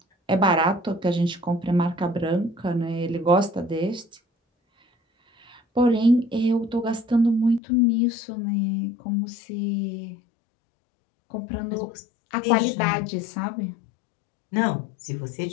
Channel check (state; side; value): drops out; right; at 7.6 s